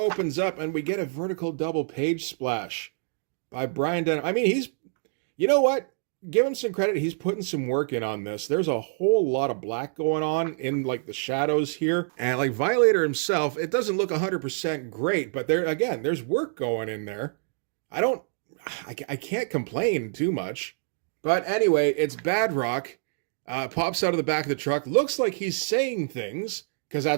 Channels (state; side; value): silent; left; digital silence